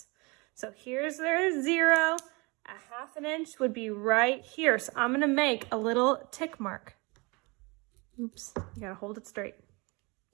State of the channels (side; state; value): left; quieter; 27.2 dB